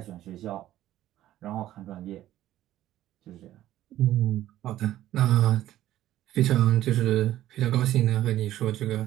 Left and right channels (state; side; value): quieter; left; 13.6 dB